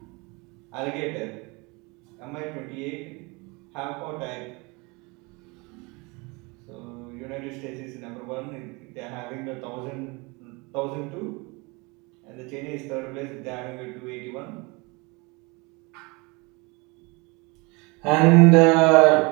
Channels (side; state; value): left; quieter; 27.3 dB